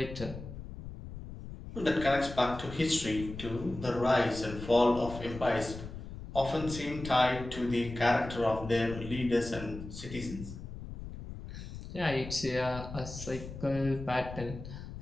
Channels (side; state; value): left; noise; rumble, 11 dB below the sound